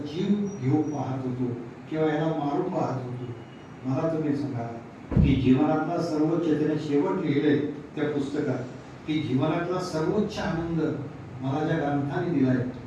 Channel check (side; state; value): both; identical; correlation 1.00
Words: जीव घेऊ पाहत होतो किंवा याला मारू पाहत होतो. मला तुम्ही सांगा की जीवनातला सर्वोच्च त्याने शेवट लिहिलंय त्या पुस्तकात की जीवनातला सर्वोच्च आनंद मला ज्या ग्रंथाने दिलाय